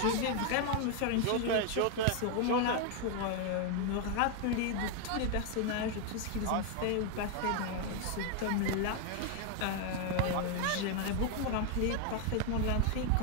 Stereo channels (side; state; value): both; different; correlation 0.01